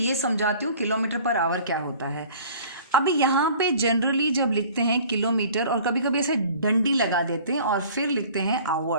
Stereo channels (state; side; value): inverted; both; correlation -0.48